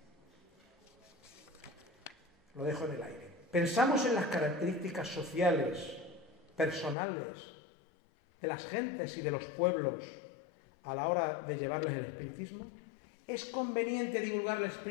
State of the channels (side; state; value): right; drops out; at 7.0 s